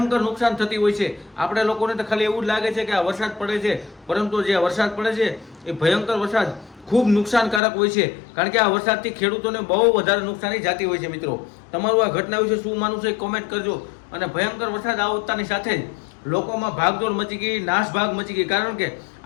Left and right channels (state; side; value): drops out; right; at 7.6 s